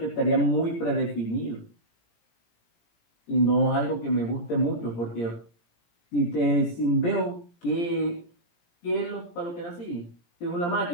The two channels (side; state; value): right; late; 17 ms